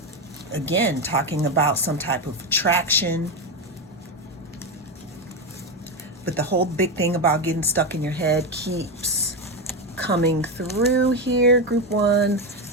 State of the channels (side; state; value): both; normal; correlation 0.12